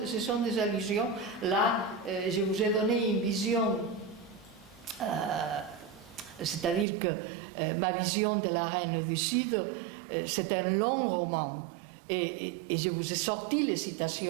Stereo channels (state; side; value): drops out; left; at 6.9 s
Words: sont des allusions, là, je vous ai donné une vision, c'est-à-dire que ma vision de la Reine du Sud, c'est un long roman. Et je vous ai sorti les